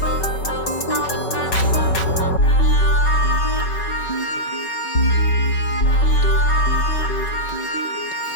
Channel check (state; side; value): late; right; 5.3 ms